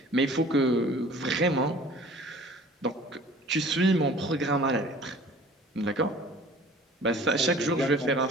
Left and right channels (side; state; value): both; normal; correlation 0.48